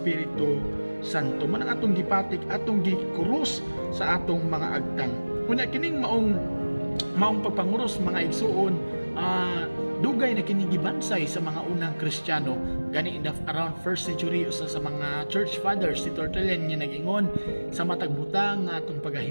Santo. Man ang atong gipatik atong gikrus sa atong mga agtang. Kuna kining maong pagpanguros mga igsuon dugay na kinigibansay sa mga unang Kristiyano gani around 1st century usa sa mga church fathers si Tertullian nga nag-ingon sa matag butang nga atong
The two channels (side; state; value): both; inverted; correlation -1.00